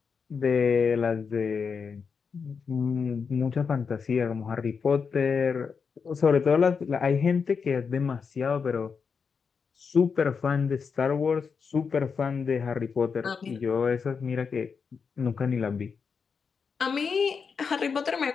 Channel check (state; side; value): quieter; right; 5.8 dB